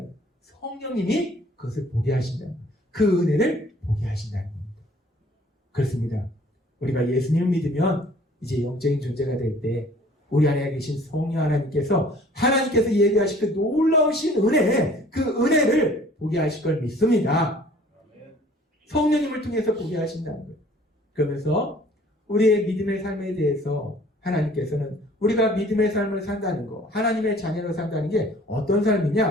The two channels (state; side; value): normal; both; correlation 0.53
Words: 거예요. 성령님이 그것을 보게 하신다는 거예요. 그 은혜를 보게 하신다는 겁니다. 그렇습니다. 우리가 예수님을 믿으면 이제 영적인 존재가 될 때 우리 안에 계신 성령 하나님께서 예비하신 그 놀라우신 은혜, 그 은혜를 보게 하실 걸 믿습니다. 성령님을 통해서 보게 하신다는 거예요. 그러면서 우리의 믿음의 삶에 대해서 하나님께서는 우리가 믿음의 삶을 산다는 거, 하나님의 자녀로 산다는 게 어떤